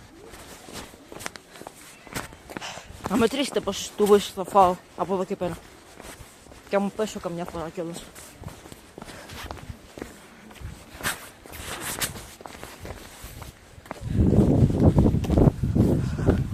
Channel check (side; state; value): both; identical; correlation 1.00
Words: Να μετρήσετε πόσες τούμπες θα φάω από εδώ και πέρα. Και αν μου πέσω καμιά φορά κιόλας.